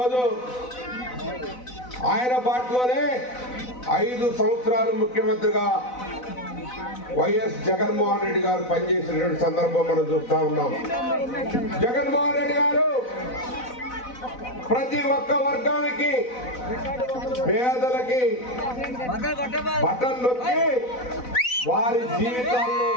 ఆయన బాటలోనే 5 సంవత్సరాలు ముఖ్యమంత్రిగా వైఎస్ జగన్మోహన్ రెడ్డి గారు పనిచేసినటువంటి సందర్భం మనం చూస్తా ఉన్నాం. జగన్మోహన్ రెడ్డి గారు ప్రతి ఒక్క వర్గానికి, పేదలకి బటన్ నొక్కి వారి జీవితాల్లో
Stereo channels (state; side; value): late; right; 4.0 ms